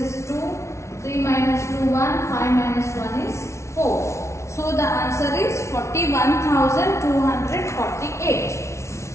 2. 3 minus 2, 1. 5 minus 1 is 4. So the answer is 41,248.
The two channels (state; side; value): late; right; 0.13 ms